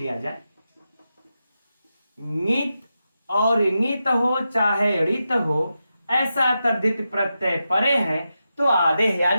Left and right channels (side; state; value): both; inverted; correlation -0.89